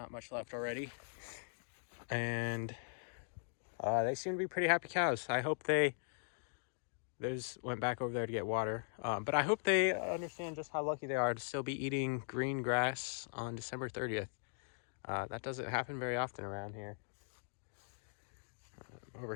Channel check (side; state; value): right; silent; digital silence